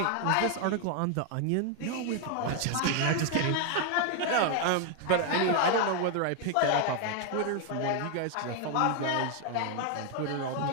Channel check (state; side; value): different; both; correlation 0.00